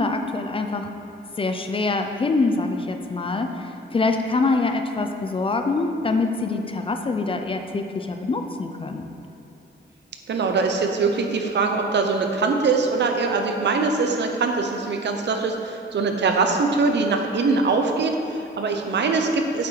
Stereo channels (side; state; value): both; normal; correlation 0.38